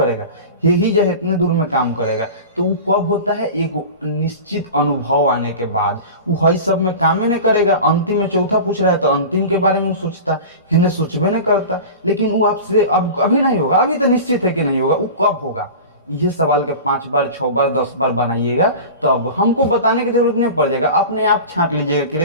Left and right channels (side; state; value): both; inverted; correlation -0.33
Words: हे ही जो इतने दूर में काम करेगा। तो वो कब होता है, एक निश्चित अनुभव आने के बाद। वो हई सब में काम नहीं करेगा, अंतिम में चौथा पूछ रहा है तो अंतिम के बारे में वो सोचता, हेरने सोचबे नहीं करता। लेकिन वो आपसे अब अभी नहीं होगा, अभी तो निश्चित है कि नहीं होगा, वो कब होगा। ये सवाल के 5 बार 6 बार 10 बार बनाइएगा, तो अब हमको बताने की जरूरत नहीं पड़ जाएगा, अपने आप छांट लीजिएगा कि रे